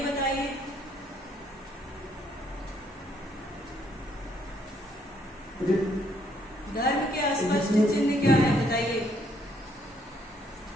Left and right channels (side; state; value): both; normal; correlation 0.69